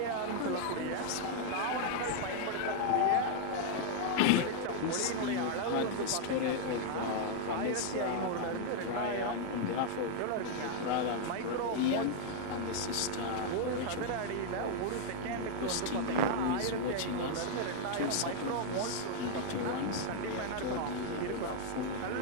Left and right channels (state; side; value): different; both; correlation -0.01